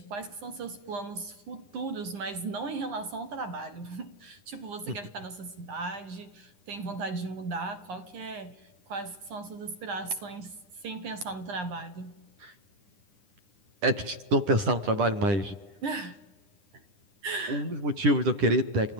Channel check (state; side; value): late; left; 9.9 ms